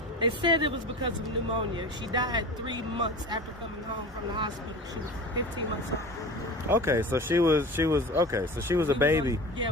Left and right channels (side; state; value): both; normal; correlation 0.34